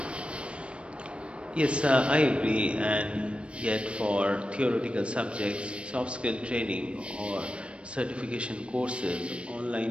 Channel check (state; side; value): late; left; 0.059 ms